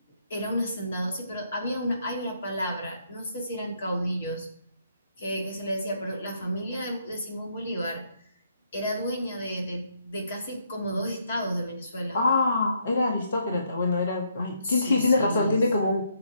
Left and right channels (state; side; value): inverted; both; correlation -0.73